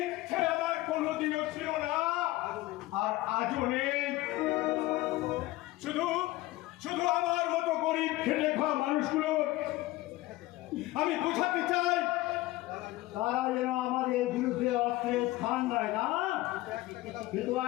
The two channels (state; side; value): quieter; right; 18.2 dB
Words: ইচ্ছে আমার কোনোদিনও ছিল না, আর আজও নেই। শুধু শুধু আমার মতো গরিব খেটে খাওয়া মানুষগুলো আমি বোঝাতে চাই, তারা যেন আমাদের বিরুদ্ধে অস্ত্রের স্থান দেয় না। কিন্তু